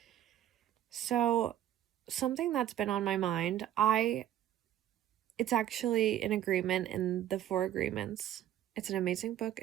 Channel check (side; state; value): left; quieter; 11.8 dB